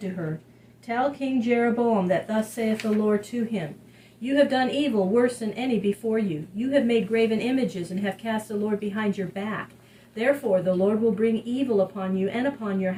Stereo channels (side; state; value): both; identical; correlation 1.00